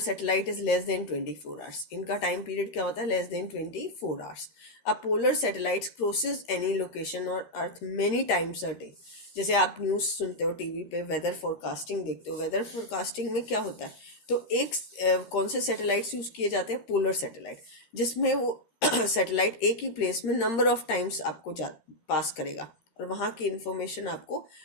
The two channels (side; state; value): right; late; 13 ms